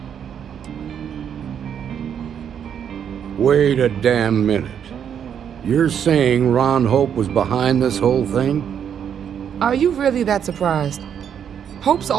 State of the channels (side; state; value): left; quieter; 8.4 dB